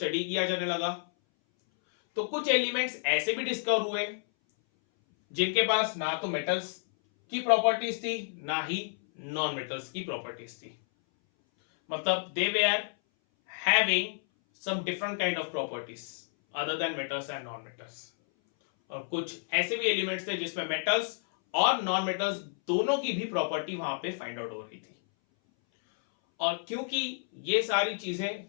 किया जाने लगा। तो कुछ एलिमेंट्स ऐसे भी डिस्कवर हुए जिनके पास ना तो मेटल्स की प्रॉपर्टीज थी ना ही नॉन मेटल्स की प्रॉपर्टीज थी। मतलब they were having some different kind of properties other than metals and non-metals। और कुछ ऐसे भी एलिमेंट्स थे जिसमें मेटल्स और नॉन मेटल्स दोनों की भी प्रॉपर्टी वहां पे फाइंड आउट हो रही थी। और क्योंकि ये सारी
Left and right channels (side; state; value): right; silent; 58 dB below the other